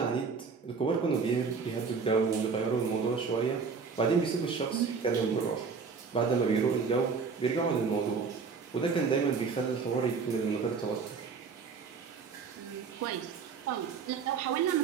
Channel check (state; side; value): quieter; left; 5.3 dB